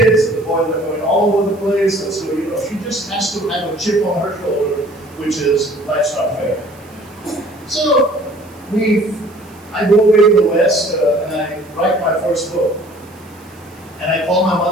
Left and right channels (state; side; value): noise; right; hiss, 27 dB below the sound